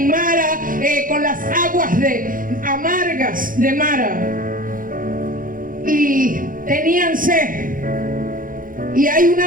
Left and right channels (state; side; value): late; left; 0.40 ms